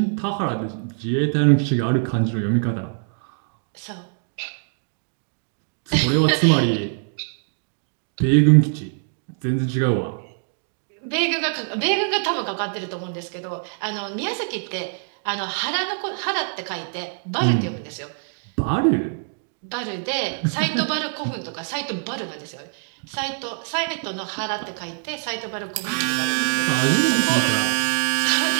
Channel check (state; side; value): silent; left; digital silence